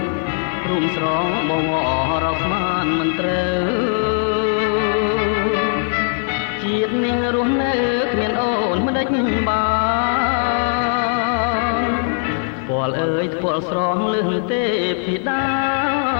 រុំស្រងបងអរកស្មានមិនត្រូវជាតិនាងរស់នៅគ្មានអូនមិនដេចបានពលអើយពលស្រងលឹងទេពីដា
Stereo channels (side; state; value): right; silent; 59 dB below the other